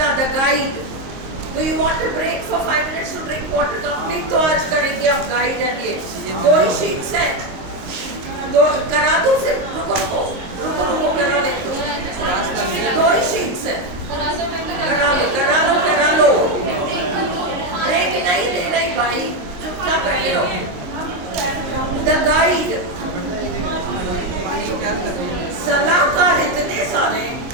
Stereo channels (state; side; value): late; left; 22 ms